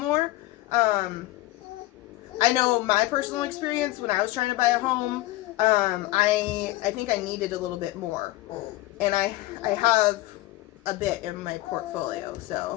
I know my personal experience when I was trying to buy a home. I think I needed a little bit more, and I have a bit in my portfolio,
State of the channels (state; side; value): quieter; right; 17.6 dB